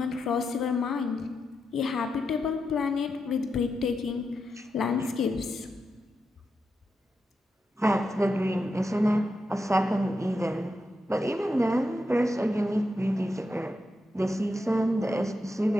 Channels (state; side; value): normal; both; correlation 0.86